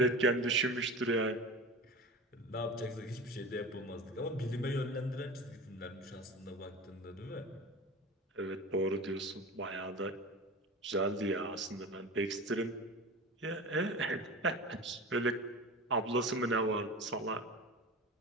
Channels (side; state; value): both; normal; correlation 0.32